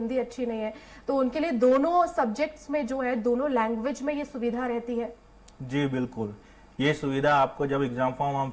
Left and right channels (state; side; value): identical; both; correlation 1.00